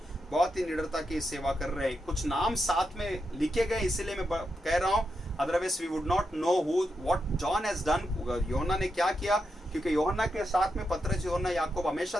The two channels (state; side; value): normal; both; correlation 0.85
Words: बहुत ही निडरता की सेवा कर रहे हैं। कुछ नाम साथ में लिखे गए, इसीलिए मैं कह रहा हूँ, otherwise we would not know what John has done, यूहन्ना ने क्या किया, क्योंकि यूहन्ना के साथ में पतरस, यूहन्ना, याकूब हमेशा